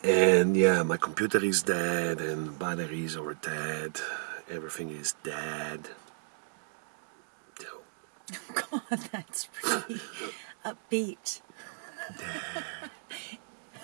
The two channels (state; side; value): silent; left; digital silence